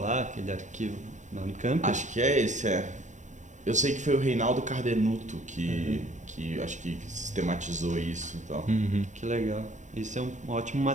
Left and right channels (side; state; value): left; late; 0.35 ms